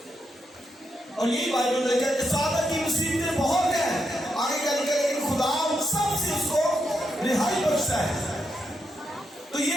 اور یہی بائبل میں کہتے ہیں سعادت کی مصیبتیں بہت ہیں. آگے کیا لکھا ہے کہ خدا سب سے اس کو رہائی بخشتا ہے. تو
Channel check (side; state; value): both; normal; correlation 0.82